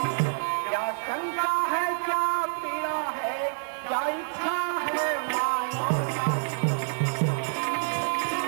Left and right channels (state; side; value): silent; left; digital silence